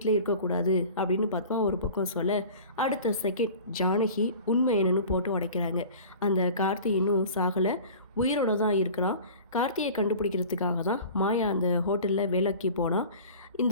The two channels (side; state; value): both; inverted; correlation -0.41